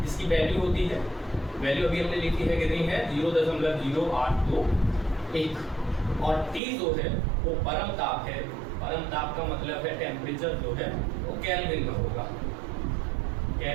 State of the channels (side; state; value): left; drops out; at 6.6 s